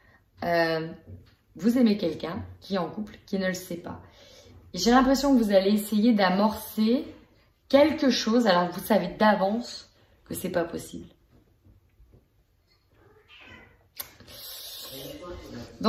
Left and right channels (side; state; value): both; identical; correlation 1.00